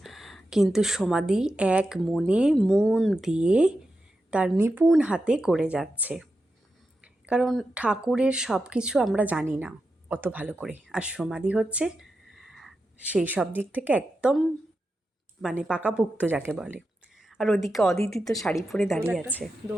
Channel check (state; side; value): normal; both; correlation 0.89